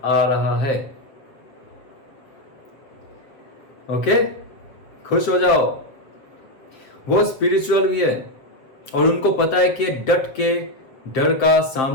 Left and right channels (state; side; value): late; right; 7.3 ms